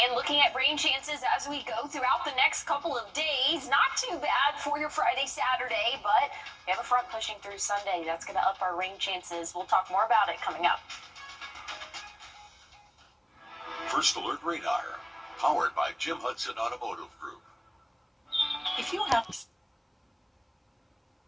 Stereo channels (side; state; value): both; identical; correlation 1.00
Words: looking at rain chances as we go throughout the next couple of days. Not too bad for your Friday, Saturday, but we have a front pushing through Sunday. That's going to up our rain chances. We'll talk more about it coming up. First Alert Radar, powered by Jim Hudson Automotive Group. If you have